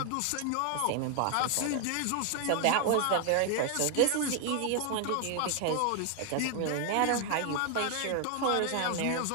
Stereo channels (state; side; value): different; both; correlation 0.00